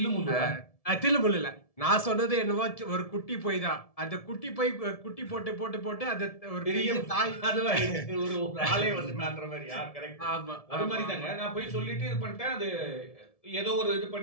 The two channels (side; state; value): right; late; 1.7 ms